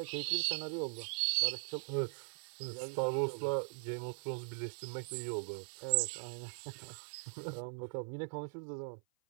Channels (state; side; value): silent; left; 51 dB below the other